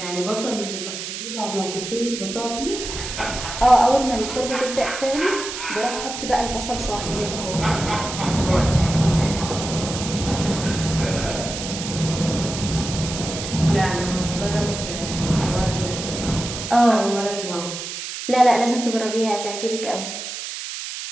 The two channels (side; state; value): right; noise; hiss, 7 dB below the sound